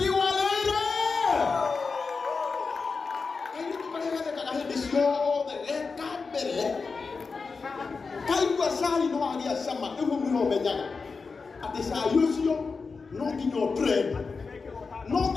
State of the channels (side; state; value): right; quieter; 4.7 dB